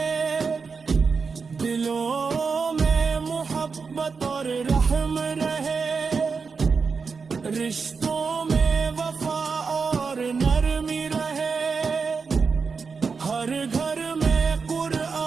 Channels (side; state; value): left; quieter; 5.1 dB